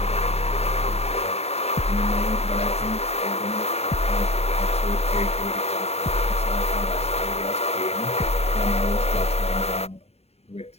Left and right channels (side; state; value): right; late; 0.30 ms